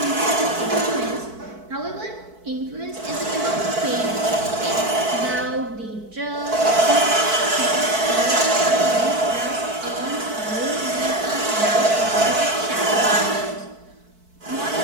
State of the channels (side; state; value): left; late; 4.6 ms